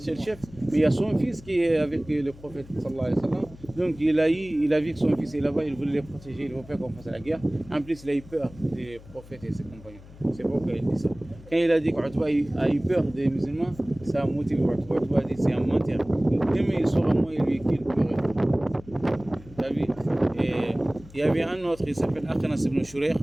le chef, mais il y a son fils qui est avec le prophète sallallahu alayhi wa sallam. Donc il a vu que son fils est là-bas, il voulait les protéger, il ne veut pas qu'on fasse la guerre. En plus, il a eu peur des prophètes et ses compagnons. C'est pourquoi il dit ça. Quand il a dit qu'Utba a eu peur des musulmans, ça a motivé Utba. Utba a dit c'est un menteur. Demain il saura moi et lui qu'il pleurait. Et il y avait un autre, il s'appelle Akhnas ibn Shurayh.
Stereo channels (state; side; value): noise; left; hum, 20 dB below the sound